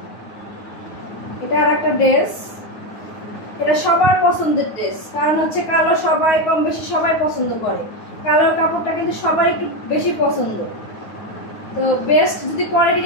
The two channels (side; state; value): right; late; 9.4 ms